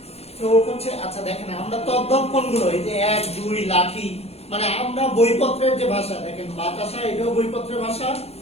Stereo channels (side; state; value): right; late; 0.30 ms